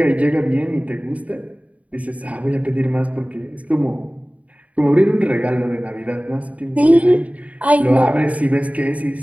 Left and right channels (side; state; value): left; late; 0.068 ms